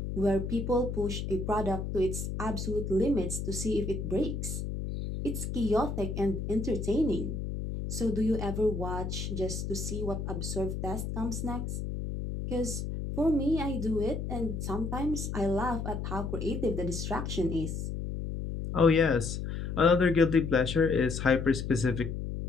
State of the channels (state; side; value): noise; left; hum, 4 dB below the sound